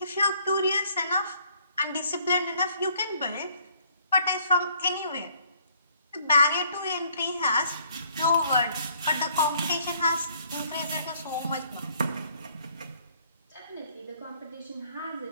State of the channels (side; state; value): both; inverted; correlation -0.63